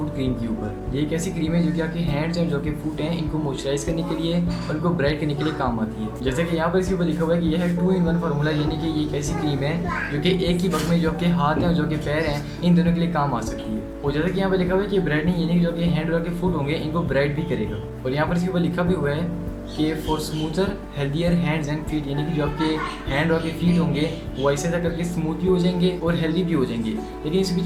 cream के ऊपर। ये एक ऐसी क्रीम है जो कि आपके हैंड्स हैं, जो कि फुट हैं, इनको मॉइस्चराइज करने के लिए और इनको ब्राइट करने के लिए काम आती है। जैसे कि यहाँ पर इसके ऊपर लिखा हुआ है कि यह है 2-in-1 फार्मूला, यानी कि ये एक ऐसी क्रीम है जो कि एक ही वक्त में जो आपके हाथ हैं और जो कि पैर हैं, इन दोनों के लिए काम आ सकती है। और जैसे कि यहाँ पर लिखा हुआ है कि ब्राइटनिंग यानी कि जो कि हैंड और के फुट होंगे इनको ब्राइट भी करेगा। और यहाँ पर इसके ऊपर लिखा भी हुआ है कि for smoother healthier hands and feet, यानी कि जो आपके हैंड और के फीट होंगे वो ऐसे ऐसा करके स्मूथ भी हो जाएंगे और हेल्दी भी हो जाएंगे। लेकिन इसकी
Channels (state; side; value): identical; both; correlation 1.00